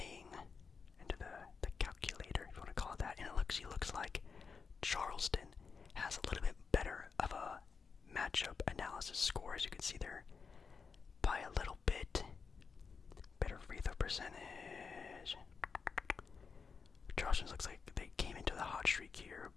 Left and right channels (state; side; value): quieter; right; 5.4 dB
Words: Into the calculator, if you want to call it that. And it looks like Charleston has a little bit better of a matchup analysis score, as you can see there, by a little bit. Better free throw percentage. Charleston looks like they came into the hot streak here,